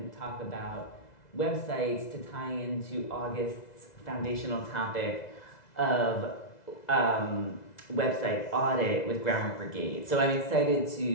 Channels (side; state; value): right; late; 2.0 ms